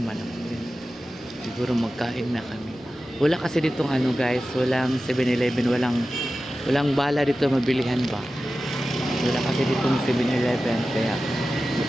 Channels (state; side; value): noise; right; rumble, 30 dB below the sound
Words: naman ako. Siguro magkain na kami. Wala kasi ditong ano guys, walang 7-Eleven, walang bala dito mabilihan ba. Wala kasi ditong 7-Eleven, kaya